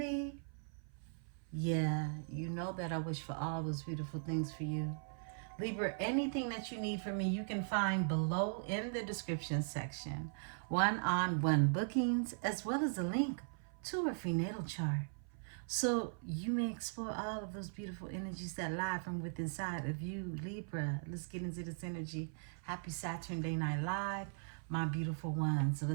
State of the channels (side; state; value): left; silent; 52 dB below the other